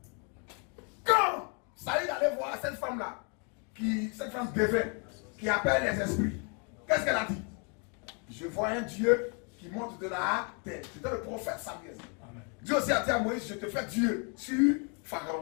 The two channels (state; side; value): quieter; right; 37.2 dB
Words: Quand Saïd allait voir cette femme-là, cette femme dévée, qui appelle les esprits, qu'est-ce qu'elle a dit? Je vois un Dieu qui monte de la terre. C'était le prophète Samuel. Dieu aussi a dit à Moïse, je te fais Dieu sur